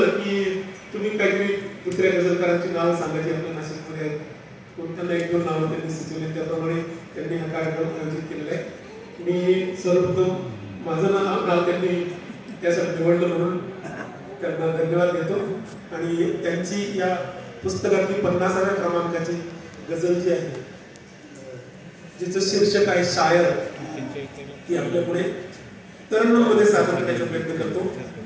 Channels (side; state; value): both; identical; correlation 1.00